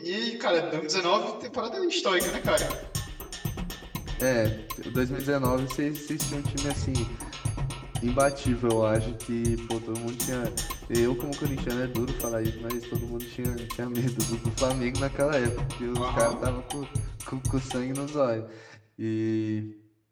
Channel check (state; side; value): identical; both; correlation 1.00